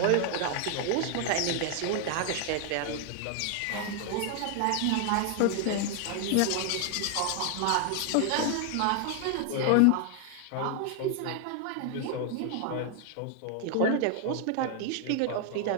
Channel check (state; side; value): different; both; correlation 0.00